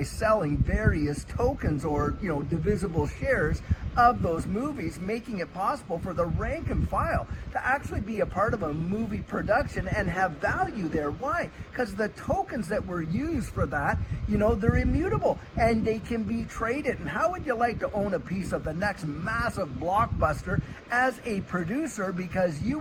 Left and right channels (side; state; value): both; identical; correlation 1.00